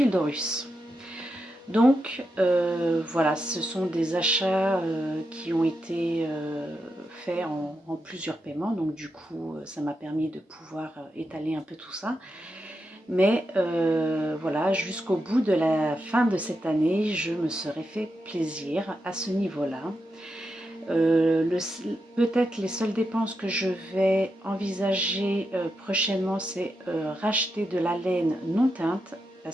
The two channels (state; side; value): normal; both; correlation 0.86